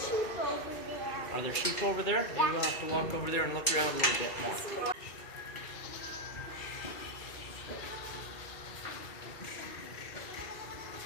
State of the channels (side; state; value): right; late; 2.3 ms